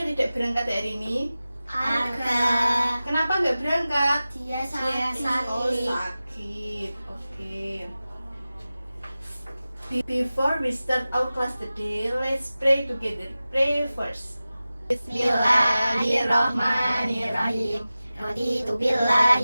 tidak berangkat hari ini? Arga. Kenapa nggak berangkat? Dia sakit. Oh, sakit. Oke. Before we start our class today, let's pray together. Pray first. Bismillahirrahmanirrahim. Raditu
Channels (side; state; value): both; inverted; correlation -0.96